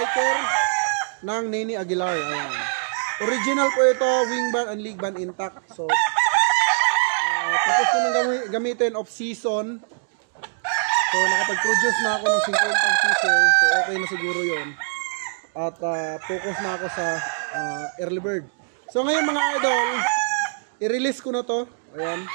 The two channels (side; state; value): left; silent; digital silence